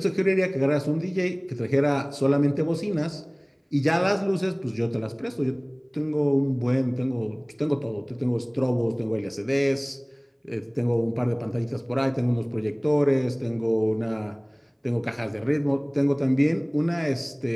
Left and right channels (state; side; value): identical; both; correlation 1.00